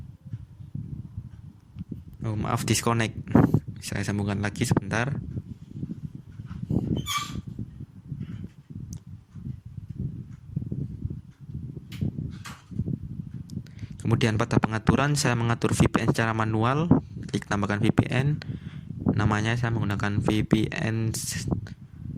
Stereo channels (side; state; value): both; identical; correlation 1.00